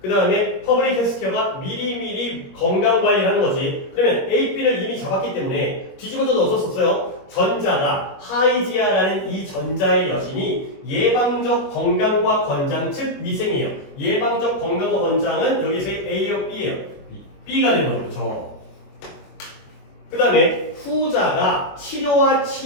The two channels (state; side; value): late; right; 22 ms